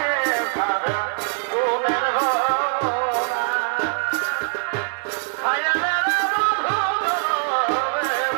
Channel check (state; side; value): silent; left; digital silence